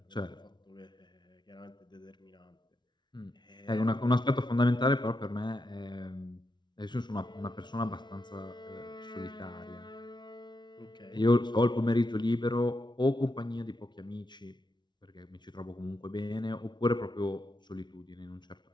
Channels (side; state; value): right; late; 0.21 ms